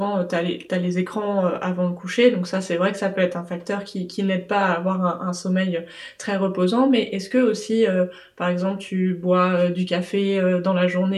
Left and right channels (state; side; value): identical; both; correlation 1.00